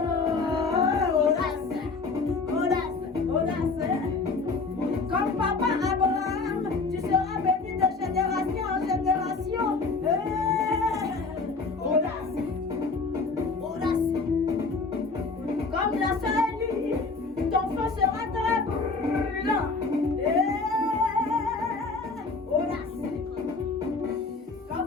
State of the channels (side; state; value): right; quieter; 4.1 dB